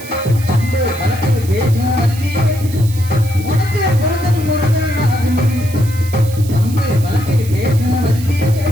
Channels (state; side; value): noise; right; hiss, 16 dB below the sound